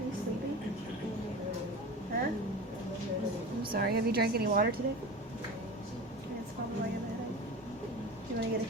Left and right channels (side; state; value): both; normal; correlation 0.31